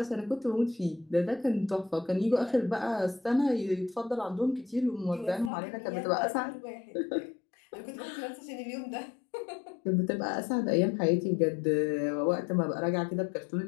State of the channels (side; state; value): right; drops out; at 5.5 s